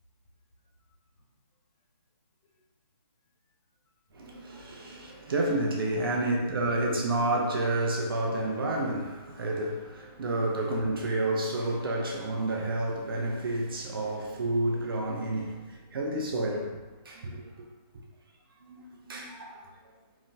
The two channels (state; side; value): inverted; both; correlation -0.57